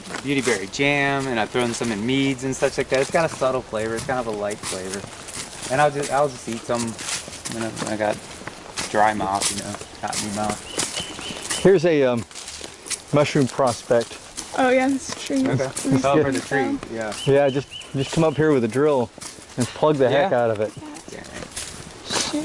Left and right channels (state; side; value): identical; both; correlation 1.00